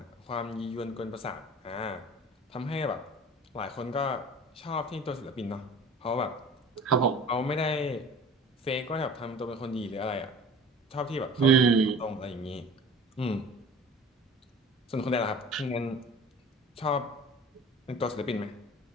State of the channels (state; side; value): normal; both; correlation 0.43